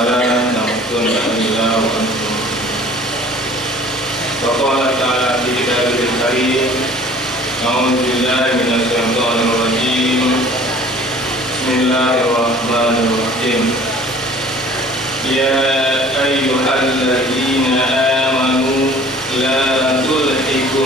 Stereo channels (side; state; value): both; normal; correlation 0.49